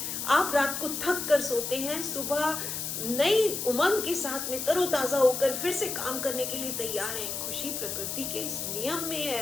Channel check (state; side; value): noise; left; hiss, 4 dB below the sound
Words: आप रात को थक कर सोते हैं, सुबह नई उमंग के साथ में तरोताजा होकर फिर से काम करने के लिए तैयार हैं, खुशी प्रकृति के इस नियम में